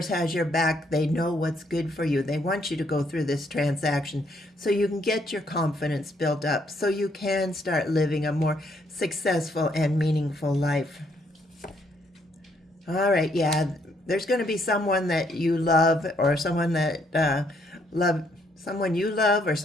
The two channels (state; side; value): normal; both; correlation 0.71